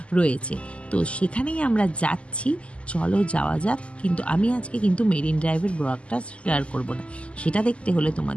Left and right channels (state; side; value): late; right; 0.057 ms